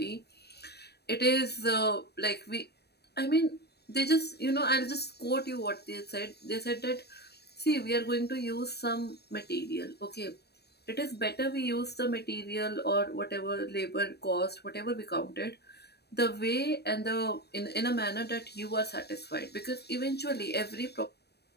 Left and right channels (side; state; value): right; late; 0.47 ms